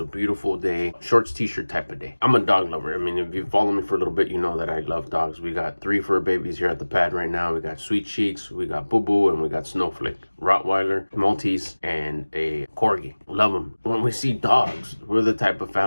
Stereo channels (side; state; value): both; inverted; correlation -1.00